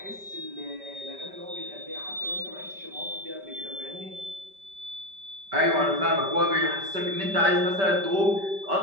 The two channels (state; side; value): late; left; 5.1 ms